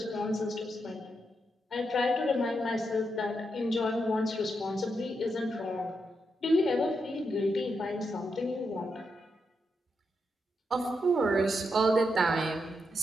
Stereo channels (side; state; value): both; normal; correlation 0.83